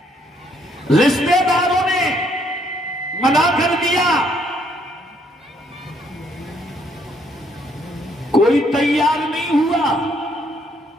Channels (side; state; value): both; normal; correlation 0.69